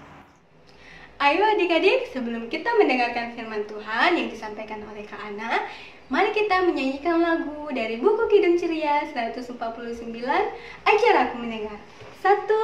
Ayo adik-adik, sebelum kita mendengarkan firman Tuhan yang disampaikan oleh Kak Ana, mari kita menyanyikan lagu dari buku Kidung Ceria 149, Ajar Aku Mendengar. 1,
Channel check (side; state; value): both; identical; correlation 1.00